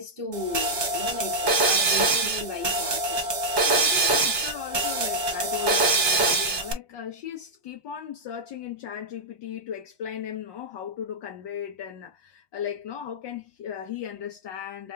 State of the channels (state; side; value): late; right; 1.2 ms